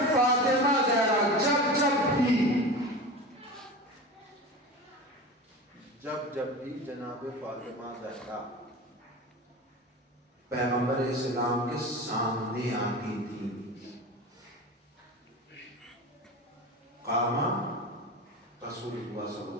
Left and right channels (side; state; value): both; normal; correlation 0.30